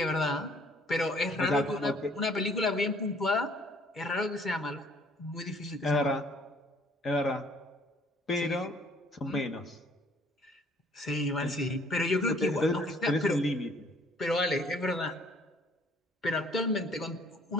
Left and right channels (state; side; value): normal; both; correlation 0.59